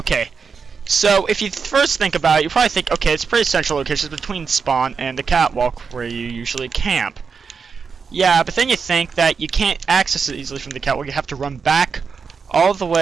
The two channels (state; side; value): quieter; left; 5.6 dB